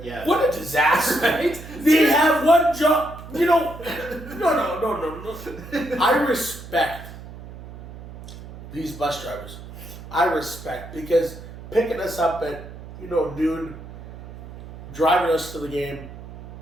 yeah. What a disaster. Right? They have one job. You know, no. I respect these bus drivers. I respect because picking us up at, noon, driving us to the game,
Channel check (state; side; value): noise; right; hum, 14 dB below the sound